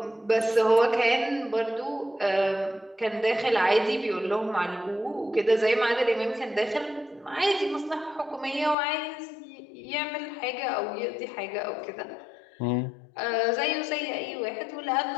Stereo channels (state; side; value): drops out; right; at 8.8 s